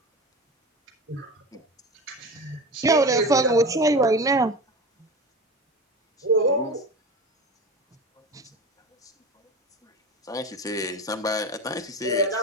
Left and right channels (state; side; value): normal; both; correlation 0.29